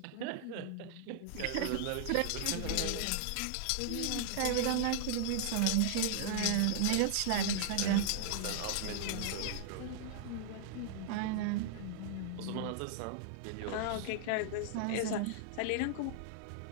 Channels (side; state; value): both; different; correlation -0.01